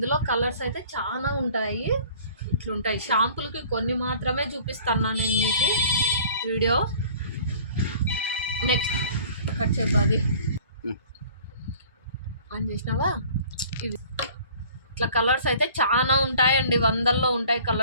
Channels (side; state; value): both; inverted; correlation -0.49